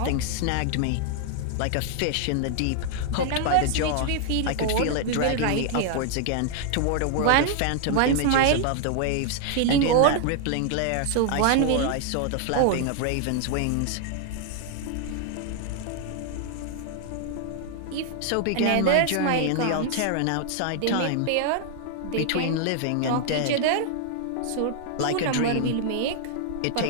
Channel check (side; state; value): both; different; correlation 0.00